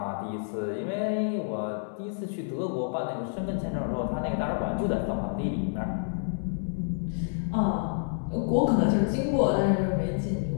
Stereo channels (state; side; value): silent; right; 59 dB below the other